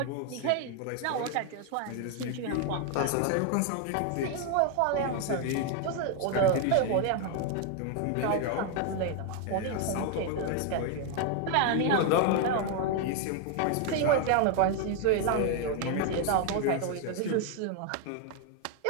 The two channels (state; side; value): different; both; correlation 0.00